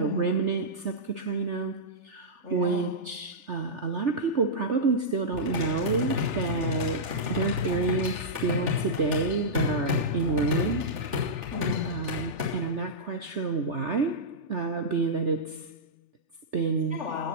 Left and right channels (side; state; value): left; late; 3.4 ms